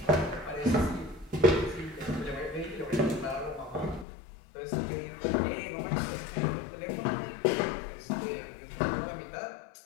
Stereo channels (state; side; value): drops out; right; at 4.0 s